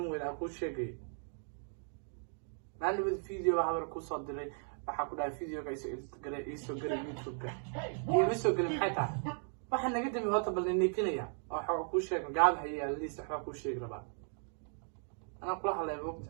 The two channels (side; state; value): left; silent; 53 dB below the other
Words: أقول شيء. معناه الفيديو عمل كوسات دري. waxaa ku dhahay video ka iso galay YouTube ka iyo iso galay xataa waxaan naga dami horta bal nikinaya waxa ku sheeg gaab haya liis waxa ku sheeg rabaa ana kula hadlay